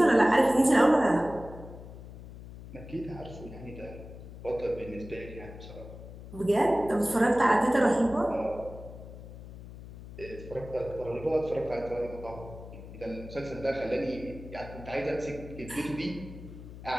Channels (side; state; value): left; noise; hum, 14 dB below the sound